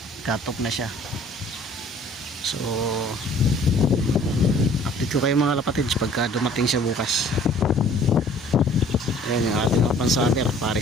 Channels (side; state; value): both; normal; correlation 0.53